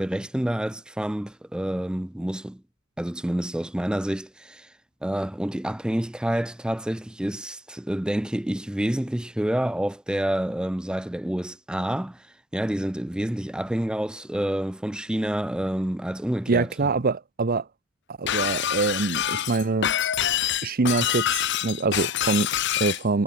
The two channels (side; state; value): both; normal; correlation 0.52